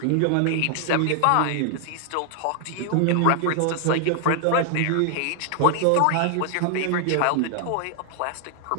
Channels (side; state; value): both; different; correlation 0.00